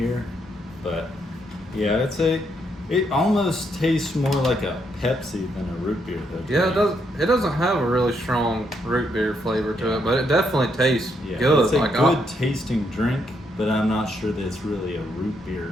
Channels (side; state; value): both; normal; correlation 0.76